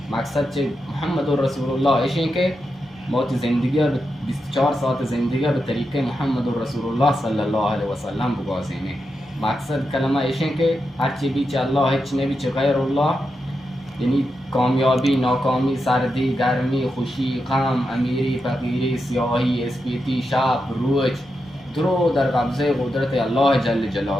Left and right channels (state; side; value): normal; both; correlation 0.87